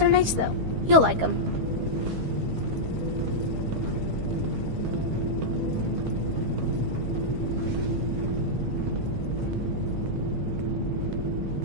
nice, though. You'll like them.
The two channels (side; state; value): left; late; 13 ms